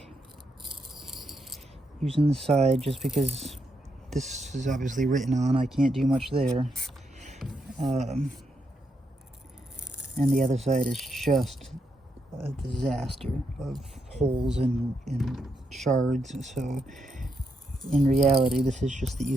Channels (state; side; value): normal; both; correlation 0.80